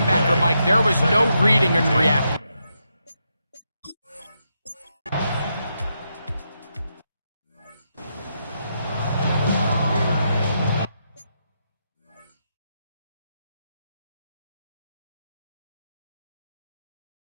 Mike. There was no reading and reacting.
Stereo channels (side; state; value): both; inverted; correlation -0.82